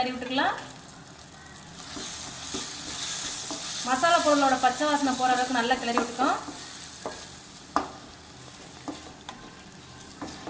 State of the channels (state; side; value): identical; both; correlation 1.00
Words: விட்டுக்கலாம். மசாலா பொருளோட பச்சை வாசனை போகிற அளவுக்கு நல்லா கிளறி விட்டுக்கோம்.